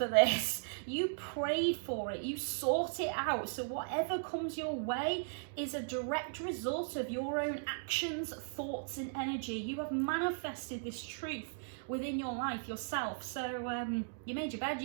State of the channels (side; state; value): left; silent; digital silence